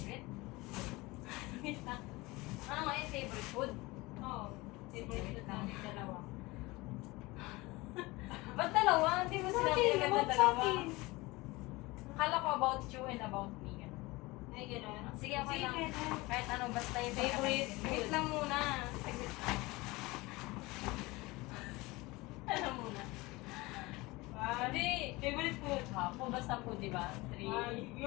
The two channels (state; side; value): quieter; right; 22.1 dB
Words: Wait lang. Ano nga yung favorite food? Oo. Favorite food namin dalawa. Ba't dalawa? Hindi mo sinabi Bakit? agad na About dalawa. sa akin. Akala ko about you and about me. Ganun. Ay, gano'n. Sige, okay lang. pwede. Kahit ano, basta yung Favorite pinaka- food. Wait lang muna. Saglit lang. Ano muna? Hindi. Favorite food. Kung basta food, di ba? 3. Ay,